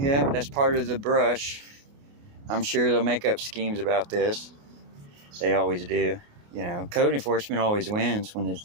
that's part of the brush. I'm sure they'll make up schemes about this. They always do. You know, code enforcement always wins when it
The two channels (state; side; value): late; left; 29 ms